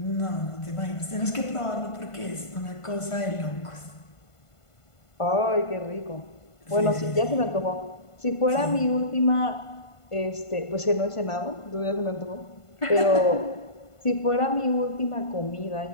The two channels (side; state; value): right; late; 1.5 ms